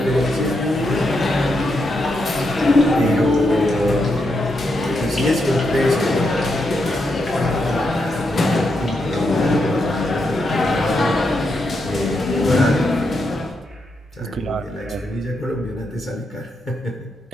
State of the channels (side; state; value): both; normal; correlation 0.83